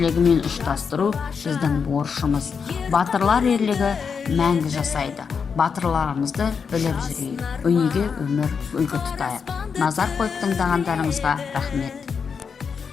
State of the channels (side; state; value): right; quieter; 6.0 dB